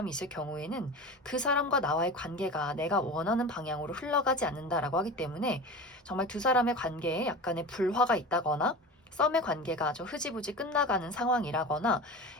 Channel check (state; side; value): normal; both; correlation 0.31